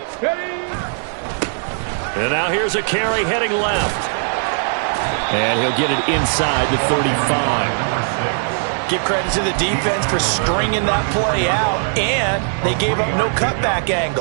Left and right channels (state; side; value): silent; left; 60 dB below the other